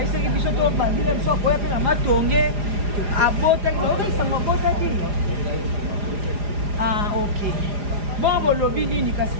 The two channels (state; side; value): late; left; 4.9 ms